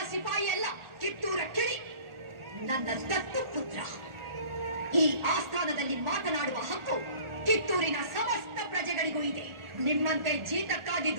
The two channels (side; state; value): left; late; 1.4 ms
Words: ಸಿಪಾಯಿ ಅಲ್ಲ, ಕಿತ್ತೂರ ಕಿಡಿ, ನನ್ನ ದತ್ತು ಪುತ್ರ. ಈ ಆಸ್ಥಾನದಲ್ಲಿ ಮಾತನಾಡುವ ಹಕ್ಕು ಕಿತ್ತೂರಿನ ಸಮಸ್ತ ಪ್ರಜೆಗಳಿಗೂ ಇದೆ. ನಿಮ್ಮಂತೆ ಜೀತಕ್ಕಾಗಿ